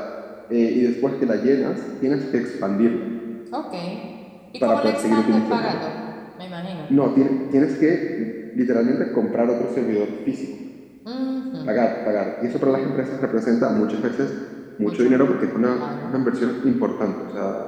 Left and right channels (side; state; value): both; identical; correlation 1.00